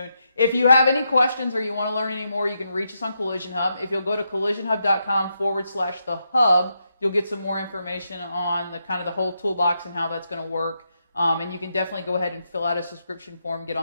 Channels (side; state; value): both; inverted; correlation -0.82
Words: If you have any questions or you want to learn any more, you can reach us on Collision Hub. If you'll go to collisionhub.com/the-hub, you'll get some more information on the kind of the whole toolbox and how that's going to work. And you can definitely go ahead and fill out a subscription form, get